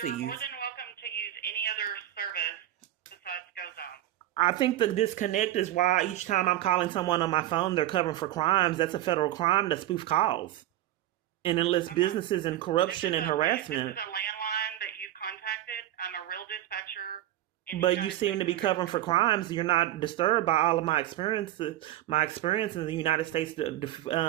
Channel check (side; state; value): left; quieter; 13.6 dB